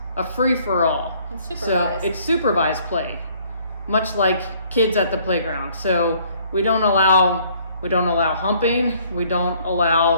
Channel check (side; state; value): both; inverted; correlation -0.61